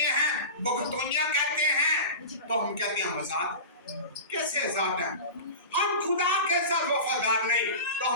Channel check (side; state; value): both; inverted; correlation -0.30